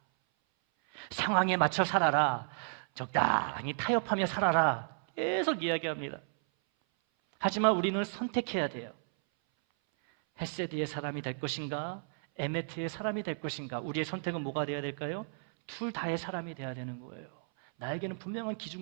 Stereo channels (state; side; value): silent; left; 56 dB below the other